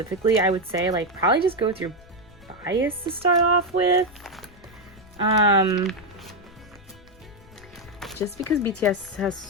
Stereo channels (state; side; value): noise; left; rumble, 23 dB below the sound